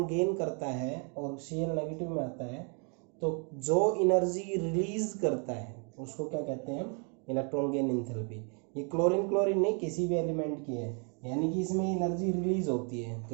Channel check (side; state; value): left; quieter; 38.4 dB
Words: गेन करता है और Cl नेगेटिव में आता है, तो जो एनर्जी रिलीज करता है उसको क्या कहते हैं हम, इलेक्ट्रॉन गेन इंथैल्पी। ये क्लोरीन क्लोरीन नहीं, किसी भी एलिमेंट की है, यानी कि इसमें एनर्जी रिलीज होती है,